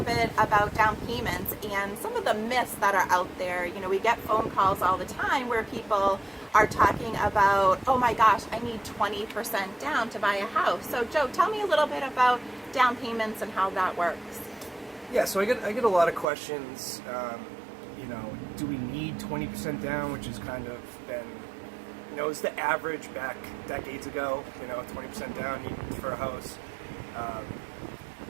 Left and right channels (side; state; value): left; drops out; at 16.2 s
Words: bit about down payments and some of the myths that are out there. You know, we get phone calls all the time where people are talking about, oh my gosh, I need 20% down to buy a house. So Joe, tell me a little bit about down payments and how that works. Yeah, so I get a lot of questions. Do we need 20% down, which has kind of been, it's the average back decades ago, 20% down for a house.